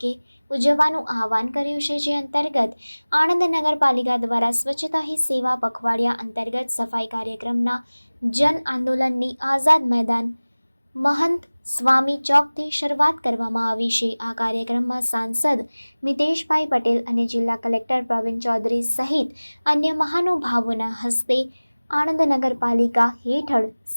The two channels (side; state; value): both; inverted; correlation -1.00